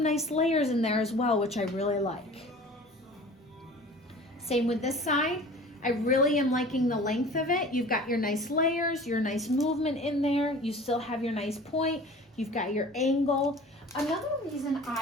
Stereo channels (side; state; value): both; normal; correlation 0.43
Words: nice layers in there as well, which I really like. Same with this side. I really am liking the length of it. You've got your nice layers, your nice movement in there. You still have your nice point. You've got your angle. Another reason